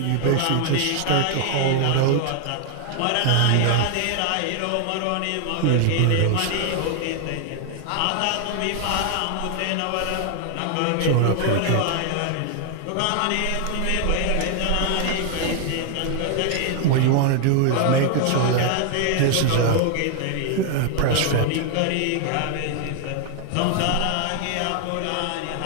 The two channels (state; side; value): different; both; correlation 0.00